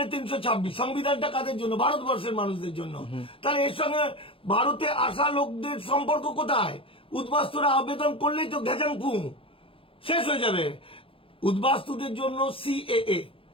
326, সংবিধানটা কাদের জন্য? ভারতবর্ষের মানুষদের জন্য। তাহলে এর সঙ্গে ভারতে আসা লোকদের সম্পর্ক কোথায়? উদ্বাস্তুরা আবেদন করলেই তো ঘেজাং ফু, শেষ হয়ে যাবে। উদ্বাস্তুদের জন্য সিএএ,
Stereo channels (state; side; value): late; right; 0.26 ms